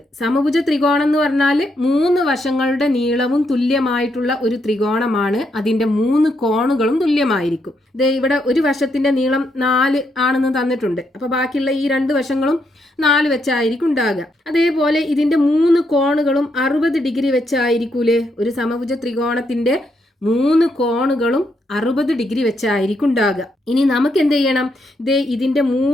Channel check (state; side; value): normal; both; correlation 0.78